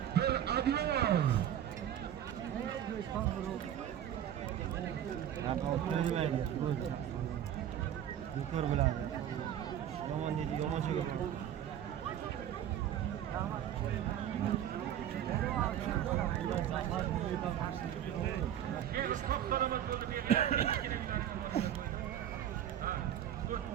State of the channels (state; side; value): quieter; left; 10.6 dB